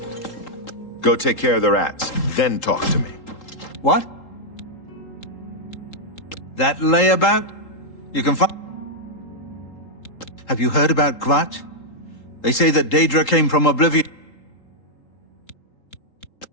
Go take care of the rats, then talk to me. What? That layabout? You can find... Have you heard about Kvatch? They say that Daedra came from Oblivion.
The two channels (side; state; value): right; late; 3.8 ms